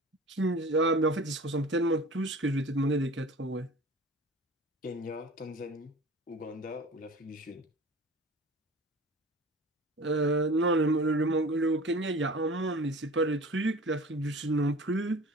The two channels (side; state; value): both; normal; correlation 0.40